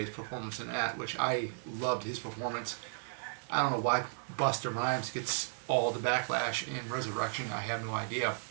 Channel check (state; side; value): silent; left; digital silence